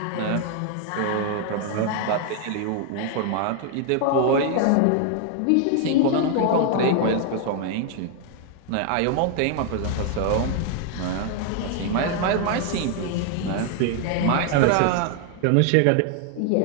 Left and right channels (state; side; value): different; both; correlation 0.00